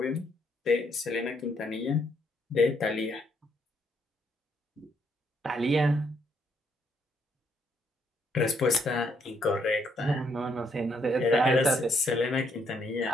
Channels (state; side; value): normal; both; correlation 0.72